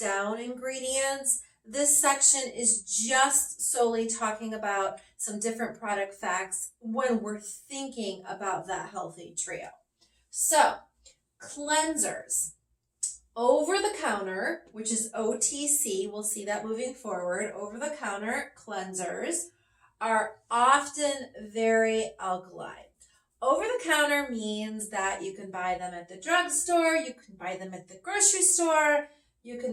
ingredients. This section is just solely talking about some different product facts when we're thinking about that healthy trio. So, cleansers. Over the counter, which is OTC, we'll see that moving forward, over the counter cleansers are often very alkaline. Over the counter means that you can buy them at the drugstore, you can buy them at the grocery store, you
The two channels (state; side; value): identical; both; correlation 1.00